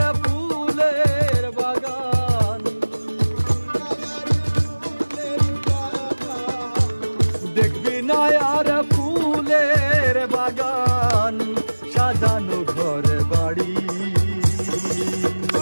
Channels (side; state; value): both; inverted; correlation -1.00